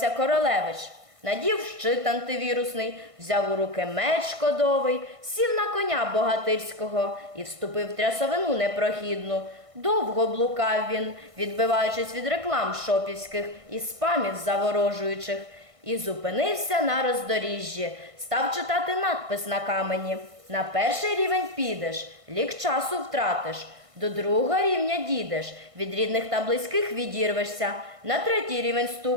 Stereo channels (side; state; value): left; late; 1.5 ms